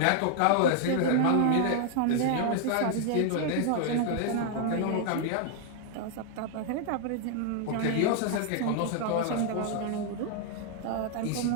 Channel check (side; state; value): both; different; correlation 0.00